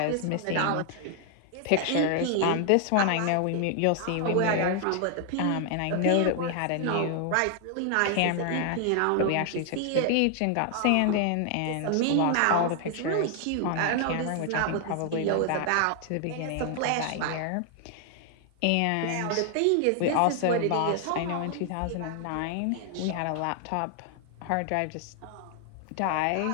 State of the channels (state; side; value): different; both; correlation 0.00